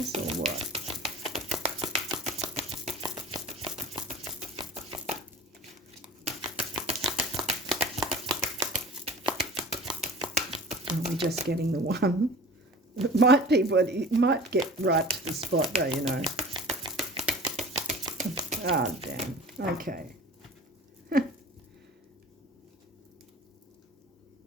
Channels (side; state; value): both; normal; correlation 0.41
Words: or what? Are we just getting the one? It might be, but it might get right to the spot though, you know. Ah, damn. Okay.